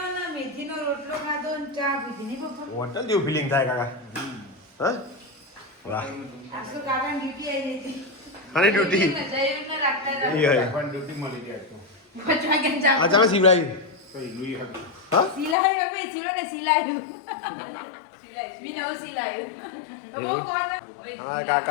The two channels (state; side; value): drops out; right; at 15.6 s